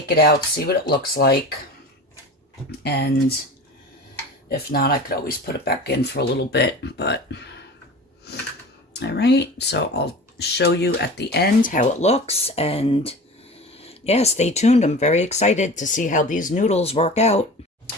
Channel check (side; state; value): both; normal; correlation 0.35